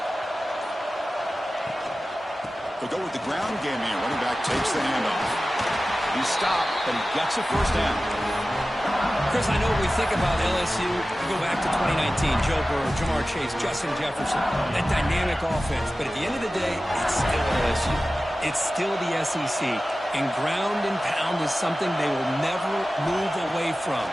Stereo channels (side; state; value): both; normal; correlation 0.95